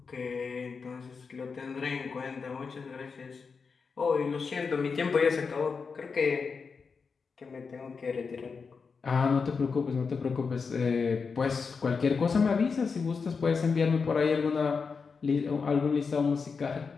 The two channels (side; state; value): right; quieter; 5.2 dB